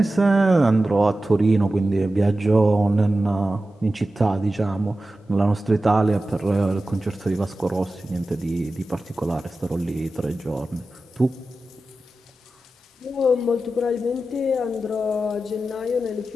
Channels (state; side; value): normal; both; correlation 0.93